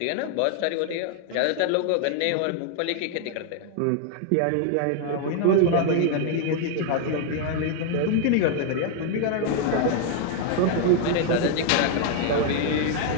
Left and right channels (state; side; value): different; both; correlation 0.00